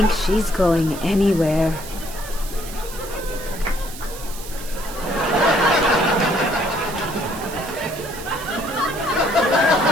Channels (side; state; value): right; noise; hiss, 14 dB below the sound